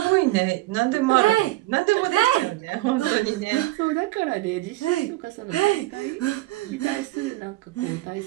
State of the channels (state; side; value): quieter; left; 18.2 dB